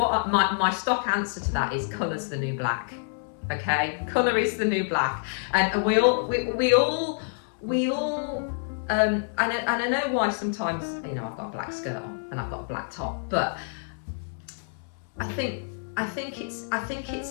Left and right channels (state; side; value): silent; right; 60 dB below the other